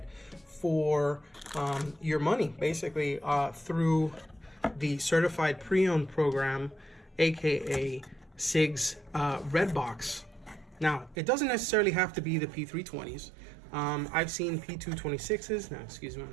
for your money, basically through the certified pre-owned program, aka Sigs Red Box. Now, it doesn't necessarily have to be the P320s. I've seen P226s. Now, excuse me, I'm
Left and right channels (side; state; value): left; drops out; at 11.2 s